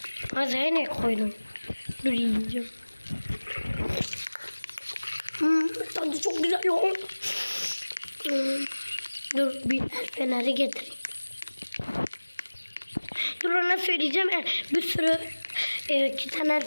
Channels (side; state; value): both; inverted; correlation -1.00